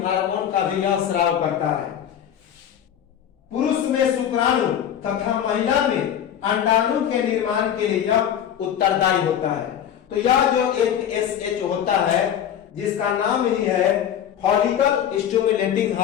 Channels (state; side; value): quieter; right; 9.7 dB